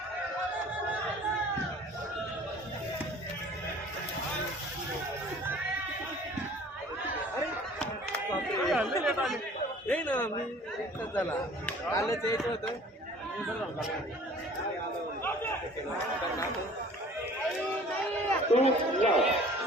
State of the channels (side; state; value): both; normal; correlation 0.49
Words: नाही ना मी एकच झाला कालच यायचं होतं